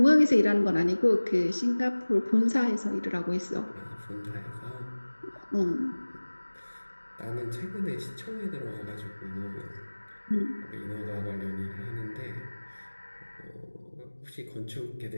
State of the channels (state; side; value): inverted; both; correlation -1.00